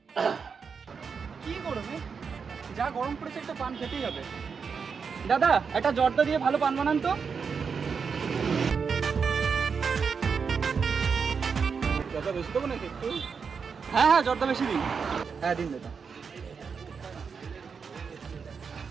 কি করবে? যা গরম পড়েছে একটা পান খেতেই হবে। দাদা একটা জর্দা দিয়ে ভালো পান বানান তো। জর্দা বেশি দেবো নাকি একটু? হ্যাঁ হ্যাঁ জর্দা বেশি দিন। হ্যাঁ দিন দাদা।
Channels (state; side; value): quieter; left; 5.8 dB